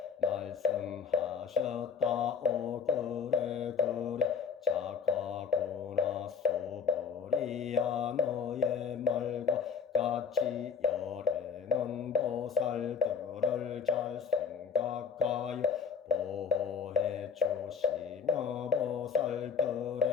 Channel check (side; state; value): right; quieter; 6.5 dB